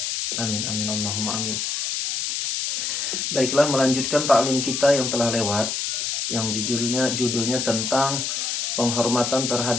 Amin amin Allahumma amin. Baiklah, melanjutkan ta'lim kita yang telah lewat, yang judulnya tentang penghormatan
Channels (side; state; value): left; noise; hiss, 1 dB below the sound